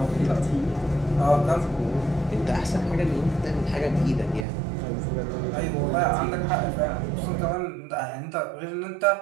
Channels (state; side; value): drops out; left; at 4.5 s